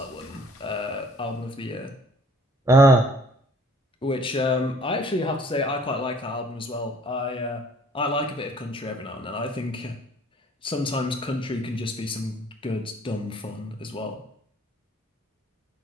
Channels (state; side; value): normal; both; correlation 0.56